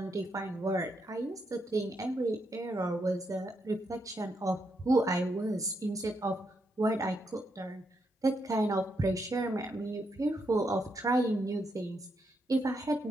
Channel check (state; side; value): normal; both; correlation 0.80